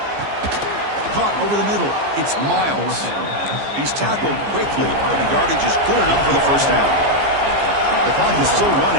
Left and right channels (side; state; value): left; late; 15 ms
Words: Caught over the middle. It's Miles. He's tackled quickly, but the yardage is good enough for the first down. The clock is still